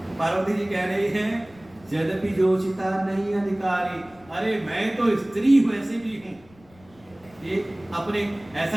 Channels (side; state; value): left; noise; rumble, 27 dB below the sound